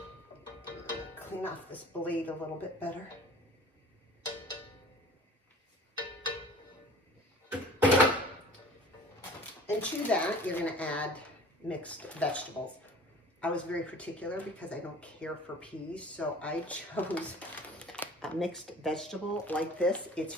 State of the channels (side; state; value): both; normal; correlation 0.45